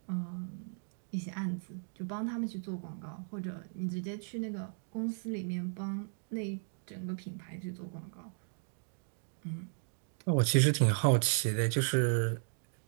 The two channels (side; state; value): left; silent; 54 dB below the other